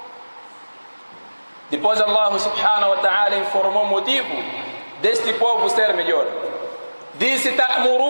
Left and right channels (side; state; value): both; inverted; correlation -1.00